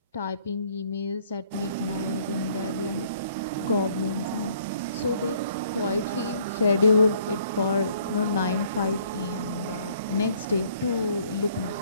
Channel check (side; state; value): both; inverted; correlation -0.61